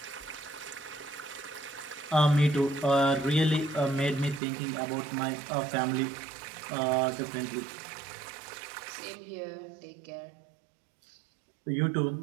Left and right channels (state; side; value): drops out; left; at 4.4 s